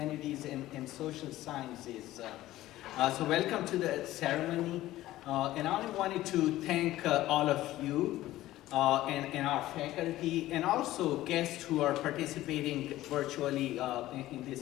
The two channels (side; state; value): right; quieter; 15.6 dB